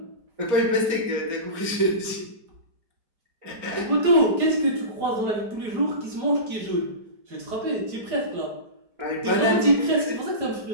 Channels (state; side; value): late; left; 4.3 ms